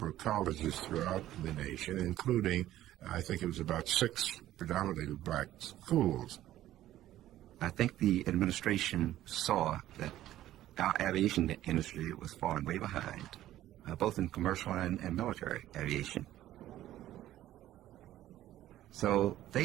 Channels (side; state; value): left; quieter; 13.7 dB